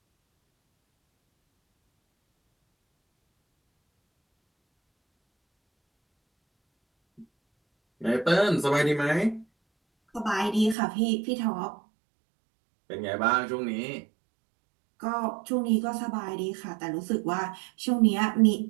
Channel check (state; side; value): drops out; left; at 10.8 s